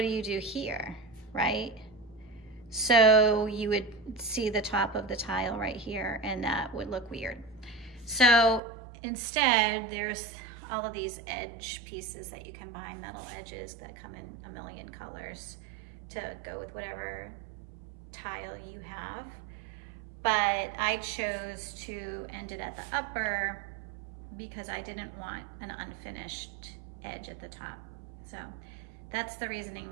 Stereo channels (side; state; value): left; drops out; at 8.6 s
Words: do you do here, right? So you would see the top of the tile right here, and that would look weird. So instead, there's all of these edge pieces that you can buy, metal edges that come in a million colors to go with whatever tile you have. But I chose to end it at the upper because I didn't want an unfinished edge at the top. So that's the reasoning